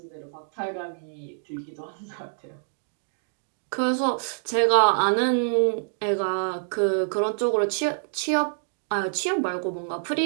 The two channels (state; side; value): silent; left; digital silence